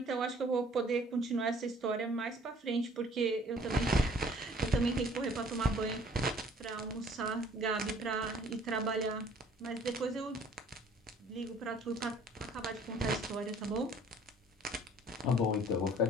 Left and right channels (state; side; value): normal; both; correlation 0.56